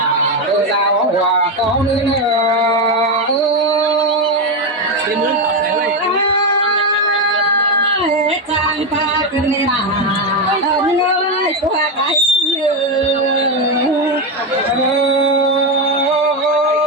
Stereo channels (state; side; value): normal; both; correlation 0.09